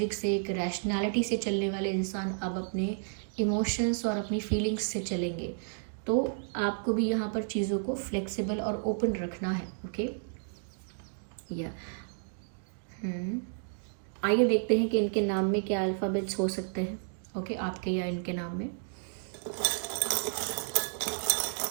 से, एक रैशनैलिटी से चलने वाले इंसान अब अपने इमोशंस और अपनी फीलिंग्स से चलेंगे। तो आपको भी यहाँ पर चीज़ों को फ्लेक्सिबल और ओपन रखना है। ओके, या आइए देखते हैं कि इनके नाम में क्या अल्फ़ाबेट्स हो सकते हैं। ओके, आपके या इनके नाम में।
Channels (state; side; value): silent; left; digital silence